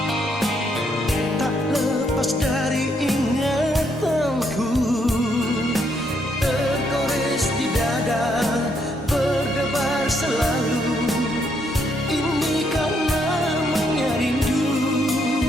Tak lepas dari ingatanku, tergores di dada, berdebar selalu. Ini karena menyarindu.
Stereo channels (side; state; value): both; normal; correlation 0.74